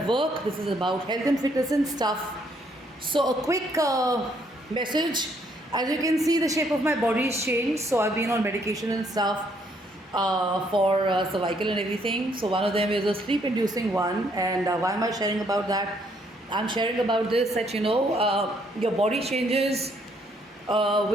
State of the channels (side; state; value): both; normal; correlation 0.69